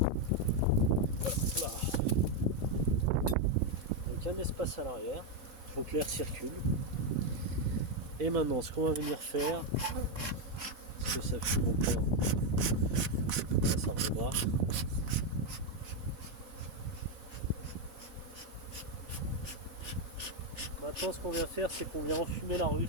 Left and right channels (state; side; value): late; left; 4.5 ms